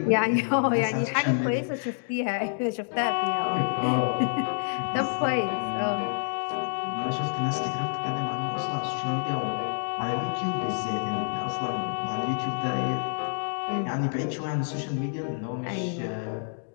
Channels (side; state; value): right; silent; digital silence